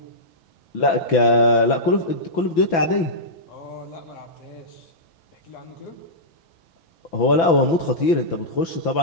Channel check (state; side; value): late; right; 6.0 ms